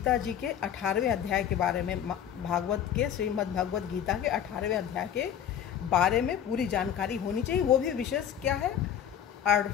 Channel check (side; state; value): right; quieter; 9.4 dB